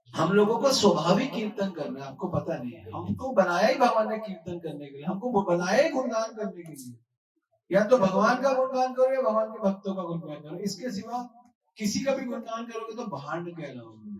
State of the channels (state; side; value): identical; both; correlation 1.00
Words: लोगों को स्वाभाविक कीर्तन करना है, आपको पता नहीं है, हमको बनाया ही भगवान ने कीर्तन करने के लिए, हमको बनाया ही गुणगान करने के लिए। या तो भगवान का गुणगान करो या भगवान के भक्तों का गुणगान करो, इसके सिवा किसी का भी गुणगान करोगे तो भांड कहलाओगे